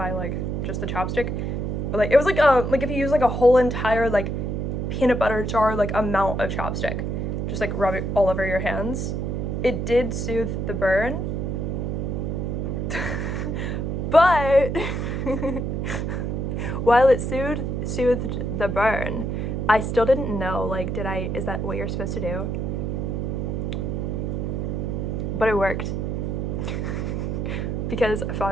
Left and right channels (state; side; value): noise; right; hum, 1 dB below the sound